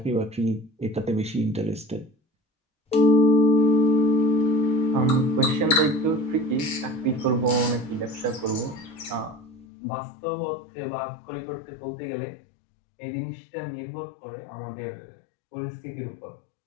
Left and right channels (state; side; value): drops out; right; at 9.7 s